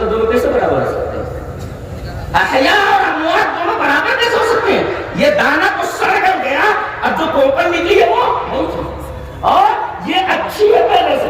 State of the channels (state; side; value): identical; both; correlation 1.00